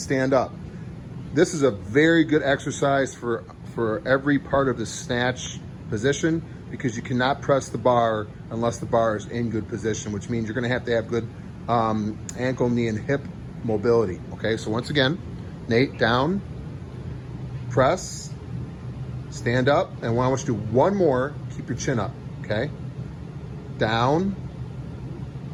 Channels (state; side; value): identical; both; correlation 1.00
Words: up. This is a very good exercise for every part of the snatch position because you cannot press the bar unless the bar is in good position, which means you're going to have good ankle, knee, and hip mobility. Okay, so once again, Nate, down, press, stand up, and I want you to do one more. Keep your chin up, okay? Down,